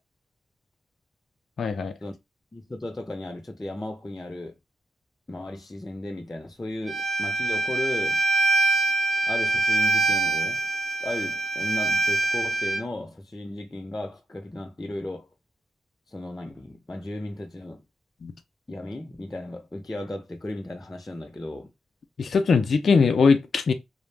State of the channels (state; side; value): normal; both; correlation 0.81